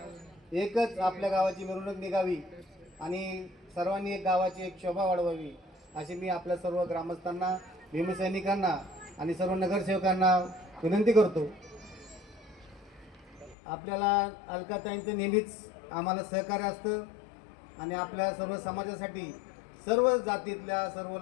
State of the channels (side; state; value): right; drops out; at 13.6 s